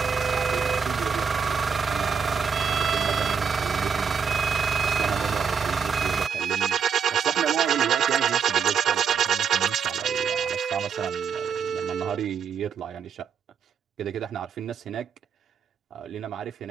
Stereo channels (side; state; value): left; quieter; 6.6 dB